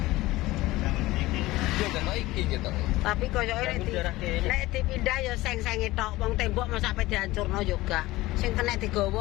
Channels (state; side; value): quieter; right; 18.6 dB